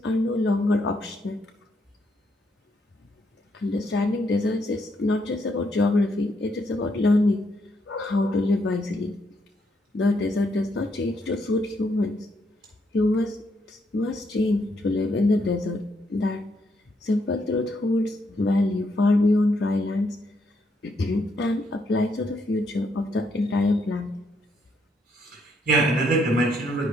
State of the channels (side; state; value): both; normal; correlation 0.75